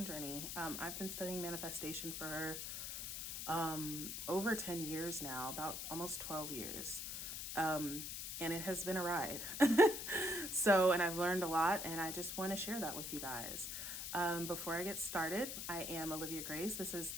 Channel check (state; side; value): noise; left; hiss, 5 dB below the sound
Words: journey. I've been studying manifestation for over 10 years now, about almost 12 years. And it has been a ride. And I've learned a lot, and I just want to share that with you guys. Before I get started, I am Olivia Grace. This is